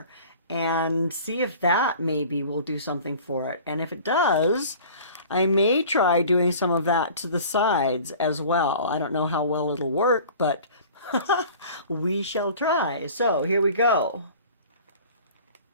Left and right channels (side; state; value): both; inverted; correlation -0.44